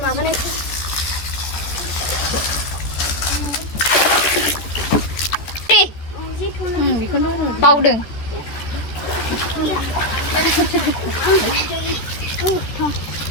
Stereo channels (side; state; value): right; late; 14 ms